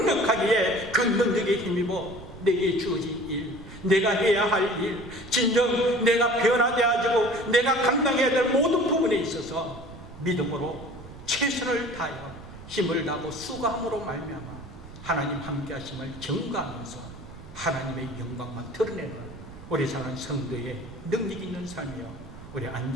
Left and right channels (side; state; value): right; noise; rumble, 16 dB below the sound